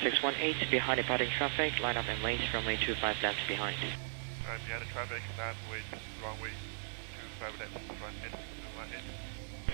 behind departing traffic, line up and wait, runway 25 left behind. Behind the traffic, line wait, runway 25 left, run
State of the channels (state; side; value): silent; left; 53 dB below the other